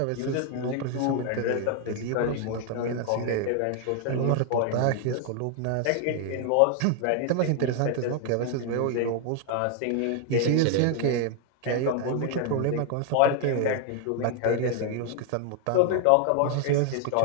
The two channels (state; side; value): different; both; correlation 0.00